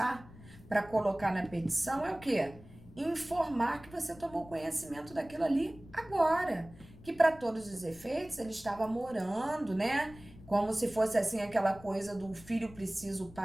para colocar na petição é o quê? Informar que você tomou conhecimento daquilo ali agora. Que para todos os efeitos ele estava morando, né? Como se fosse assim aquela coisa do filho precisa, o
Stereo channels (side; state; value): left; noise; rumble, 20 dB below the sound